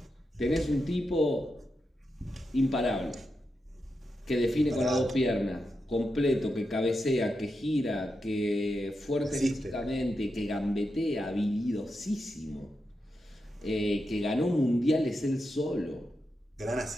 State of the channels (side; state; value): both; normal; correlation 0.87